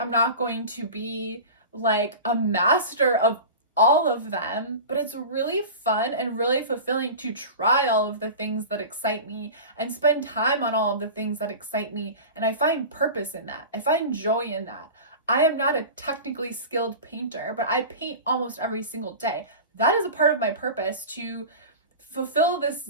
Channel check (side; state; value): both; inverted; correlation -0.32